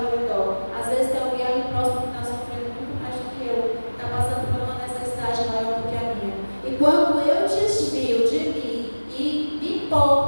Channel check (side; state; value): both; inverted; correlation -1.00